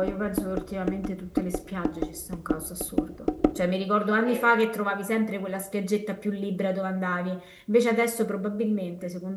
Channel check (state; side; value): identical; both; correlation 1.00